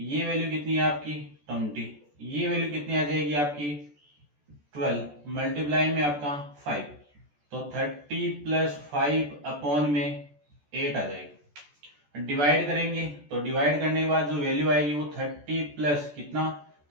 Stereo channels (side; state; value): left; late; 14 ms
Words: वैल्यू कितनी है आपकी, 20। ये वैल्यू कितनी आ जाएगी आपकी, 12 मल्टीप्लाई में आपका 5। तो 30 प्लस 5 अपॉन में 8 आ जाएगी। डिवाइड करेंगे तो डिवाइड करने के बाद जो वैल्यू आएगी वो 30 प्लस कितना,